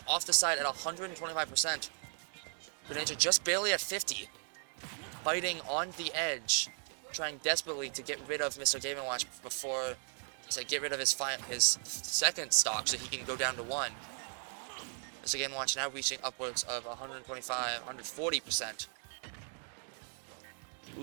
off the side at 125%. Greninja just barely at 50. Fighting on the edge. Trying desperately to get rid of Mr. Game & Watch before... So get rid of his second stock so he can go down to 1. Mr. Game & Watch now reaching upwards of 125, 140%.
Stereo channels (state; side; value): silent; left; 53 dB below the other